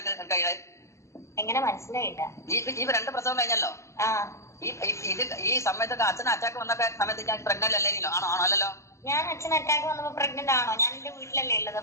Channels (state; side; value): late; right; 0.14 ms